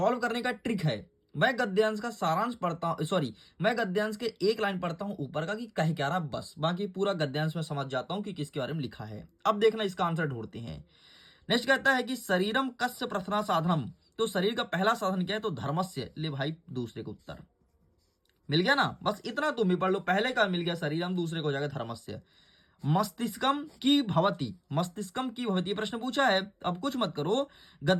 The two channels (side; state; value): both; identical; correlation 1.00